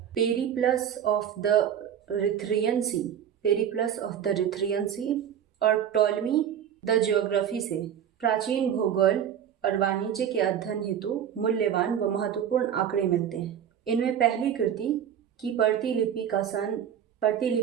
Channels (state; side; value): quieter; left; 9.2 dB